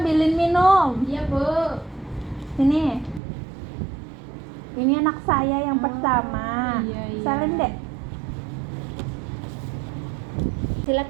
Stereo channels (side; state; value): left; drops out; at 3.2 s